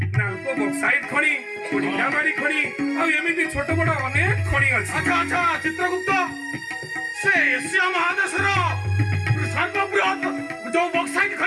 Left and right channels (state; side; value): identical; both; correlation 1.00